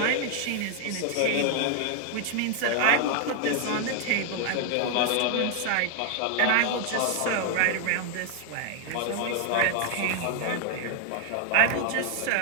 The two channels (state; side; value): different; both; correlation 0.00